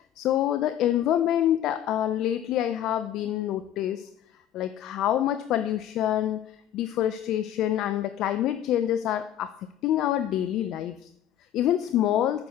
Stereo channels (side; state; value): right; quieter; 11.2 dB